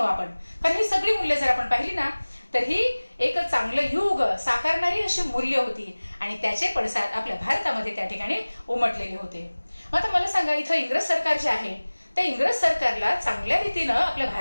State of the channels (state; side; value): inverted; both; correlation -1.00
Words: आपण, कारण ही सगळी मूल्य जर आपण पाहिली ना तर ही एक चांगलं युग साकारणारी अशी मूल्य होती आणि त्याचे पडसाद आपल्या भारतामध्ये त्या ठिकाणी उमटलेले होते. मग आता मला सांगा इथं इंग्रज सरकार जे आहे त्या इंग्रज सरकारला चांगल्या रीतीनं आपल्या